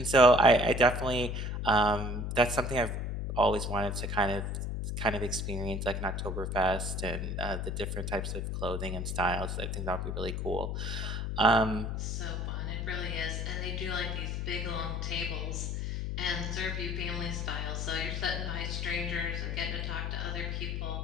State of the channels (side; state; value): left; noise; hum, 2 dB below the sound